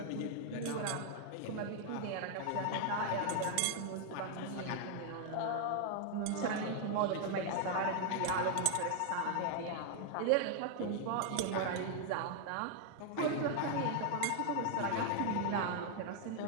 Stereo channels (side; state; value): both; different; correlation 0.00